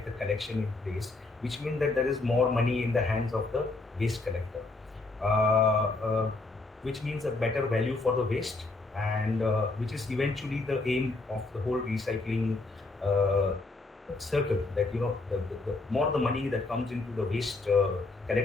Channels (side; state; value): right; quieter; 3.3 dB